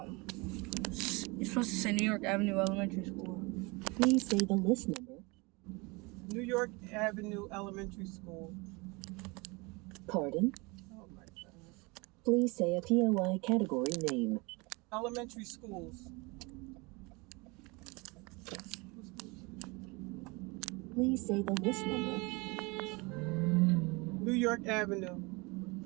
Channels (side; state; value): left; quieter; 26.8 dB